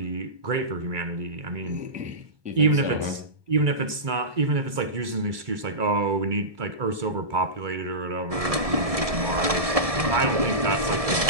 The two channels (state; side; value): late; left; 1.7 ms